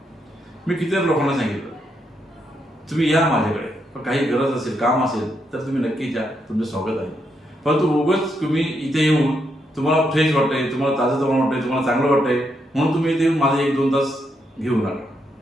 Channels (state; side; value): normal; both; correlation 0.79